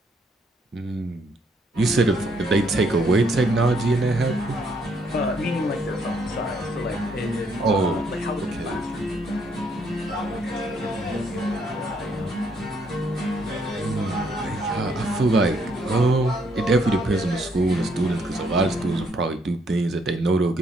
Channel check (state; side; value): normal; both; correlation 0.70